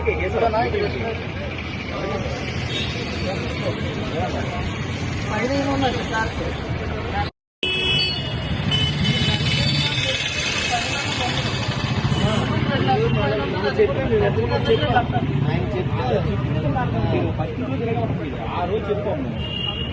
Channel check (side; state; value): both; identical; correlation 1.00